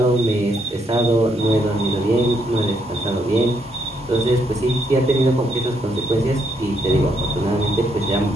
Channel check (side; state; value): both; normal; correlation 0.74